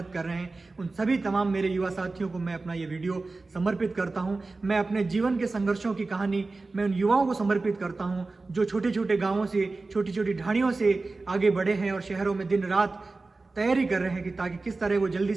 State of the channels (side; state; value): left; quieter; 3.6 dB